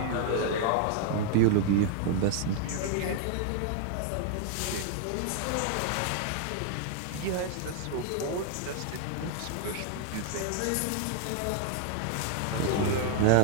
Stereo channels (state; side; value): different; both; correlation 0.00